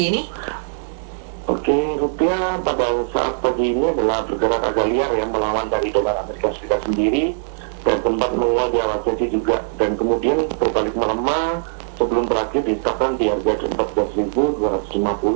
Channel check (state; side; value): silent; left; digital silence